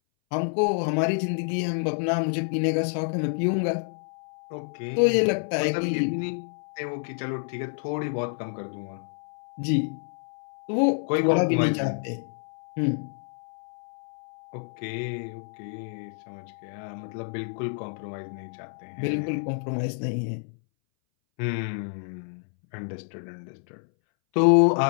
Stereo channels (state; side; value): silent; right; 59 dB below the other